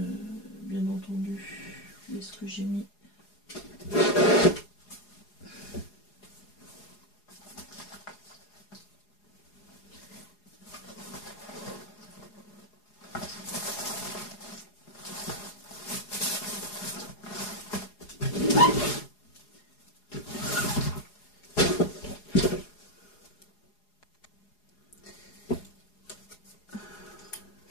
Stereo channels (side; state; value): right; late; 4.8 ms